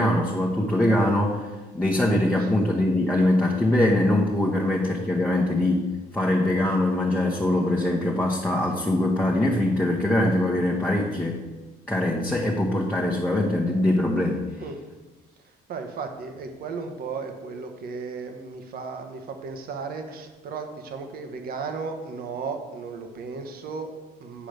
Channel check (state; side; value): normal; both; correlation 0.78